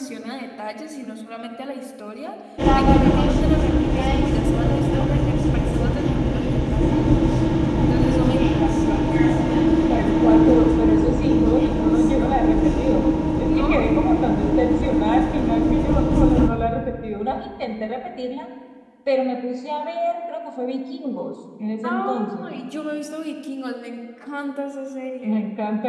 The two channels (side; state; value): both; identical; correlation 1.00